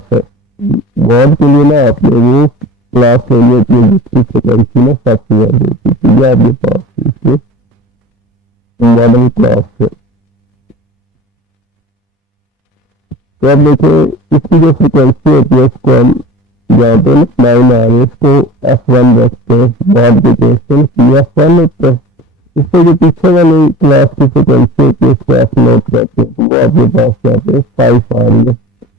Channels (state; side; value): normal; both; correlation 0.38